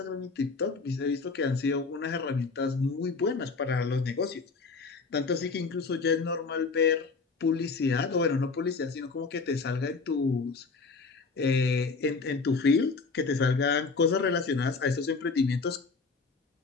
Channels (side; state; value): right; quieter; 4.4 dB